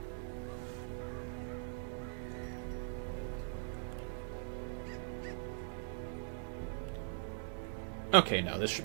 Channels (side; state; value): left; silent; digital silence